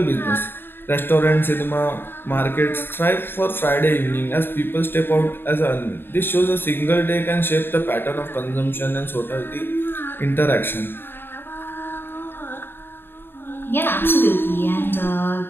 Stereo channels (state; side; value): late; right; 0.10 ms